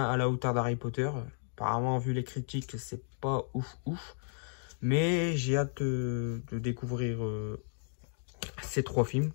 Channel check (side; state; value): right; silent; digital silence